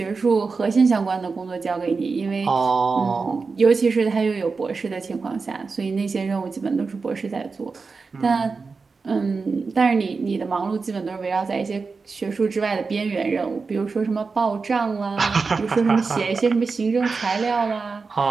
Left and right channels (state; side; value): quieter; left; 4.5 dB